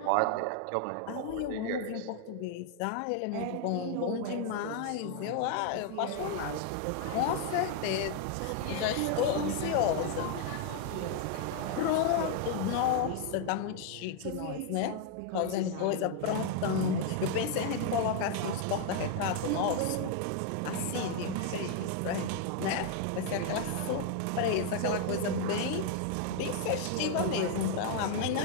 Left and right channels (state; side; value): different; both; correlation 0.00